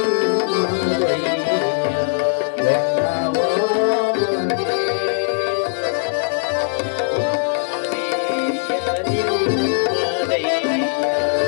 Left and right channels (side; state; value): right; silent; digital silence